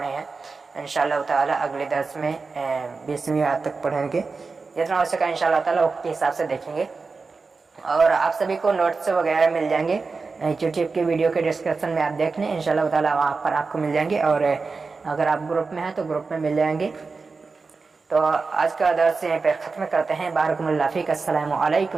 हैं, इंशाअल्लाह ताला अगले दर्स में 20वीं आयत तक पढ़ेंगे। जितना हो सका इंशाअल्लाह ताला वक्त के हिसाब से देखेंगे। और आप सभी को नोट्स वगैरह मिल जाएंगे यूट्यूब के वीडियो के डिस्क्रिप्शन में, आप देख लें इंशाअल्लाह ताला वहाँ पर आपको मिल जाएंगे। और अगर आप ग्रुप में हैं तो ग्रुप में मिल जाएंगे। तो आज का दर्स यहीं पर ख़त्म करते हैं। बारकुमुल्लाह फ़ीक। अस्सलामु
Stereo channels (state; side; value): quieter; left; 4.4 dB